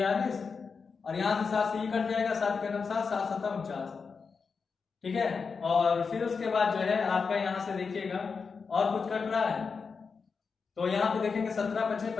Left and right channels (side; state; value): right; quieter; 5.2 dB